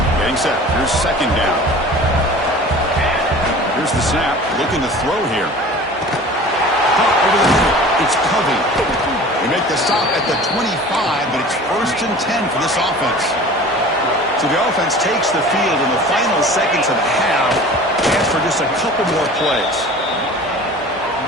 Getting set. Here's 2nd down. Here's the snap. Looking to throw here. Over the middle. It's Covey. They make the stop at the 25, but it's 1st and 10 for this offense. So the offense takes the field in the final seconds of the half. Chance for just a couple more plays.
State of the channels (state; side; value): normal; both; correlation 0.42